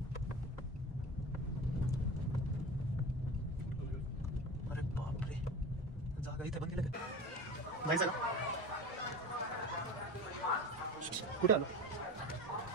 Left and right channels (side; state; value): both; normal; correlation 0.32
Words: अरे बापरे. जागा इथे बंद केलं का? जायचं का? कुठे आलो?